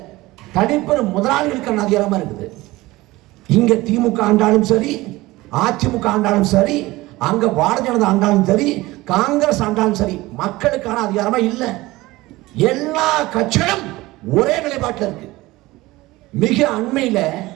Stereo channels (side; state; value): left; quieter; 19.4 dB